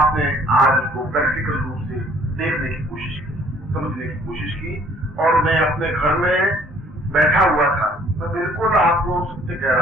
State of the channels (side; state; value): both; normal; correlation 0.58